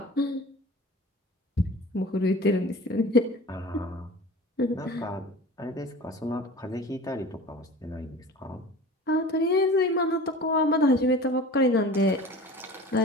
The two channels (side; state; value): both; normal; correlation 0.38